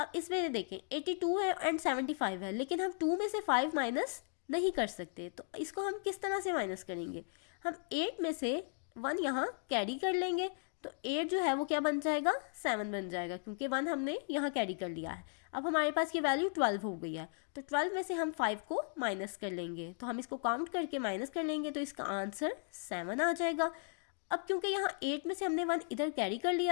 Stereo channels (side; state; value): right; silent; 53 dB below the other